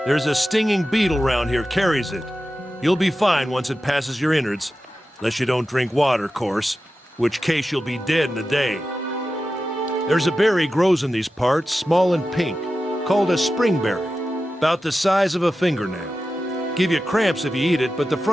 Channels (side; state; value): both; normal; correlation 0.93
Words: There's a stinging beetle round here, carries it. You'll be fine once it passes your innards. Unless you don't drink water, course. Which case you'll be dead in a day. There's a berry grows in these parts, small and pink, called a springberry. About the size of a fingernail. Give you cramps if you eat it, but the